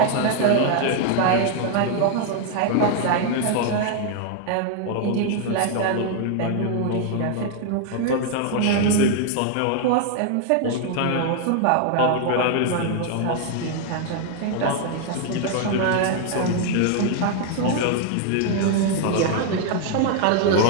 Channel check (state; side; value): different; both; correlation 0.00